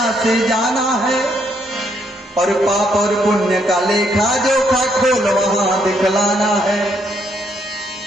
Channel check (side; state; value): both; normal; correlation 0.73